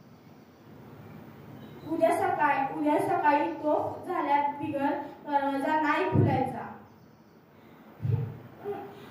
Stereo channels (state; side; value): identical; both; correlation 1.00